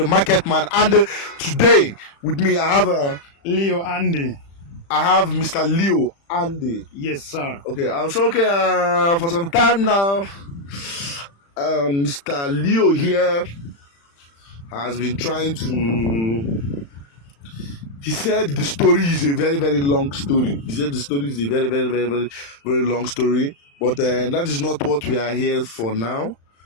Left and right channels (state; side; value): late; right; 35 ms